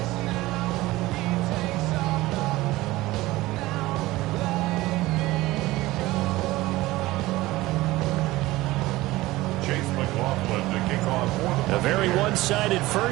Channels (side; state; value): left; quieter; 18.5 dB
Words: A very one-sided